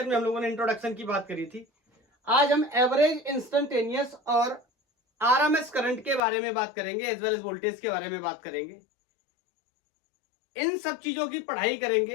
में हम लोगों ने इंट्रोडक्शन की बात करी थी। आज हम एवरेज, इंस्टेंटेनियस और आरएमएस करंट के बारे में बात करेंगे, एज वेल एज वोल्टेज के बारे में बात करेंगे। इन सब चीजों की पढ़ाई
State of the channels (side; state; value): right; drops out; at 6.2 s